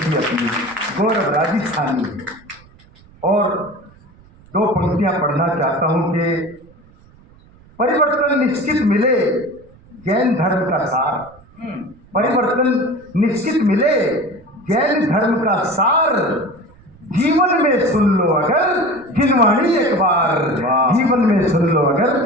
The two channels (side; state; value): right; noise; rumble, 27 dB below the sound